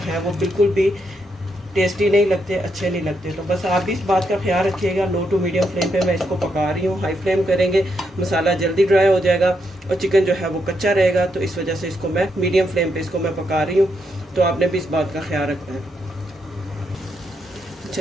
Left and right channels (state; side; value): normal; both; correlation 0.80